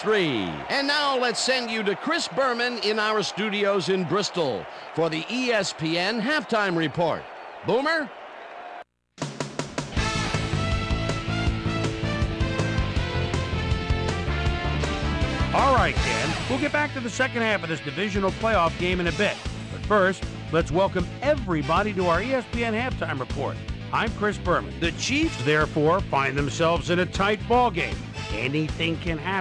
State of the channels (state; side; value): identical; both; correlation 1.00